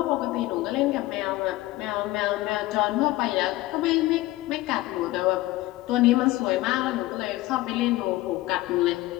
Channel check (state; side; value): quieter; right; 17.7 dB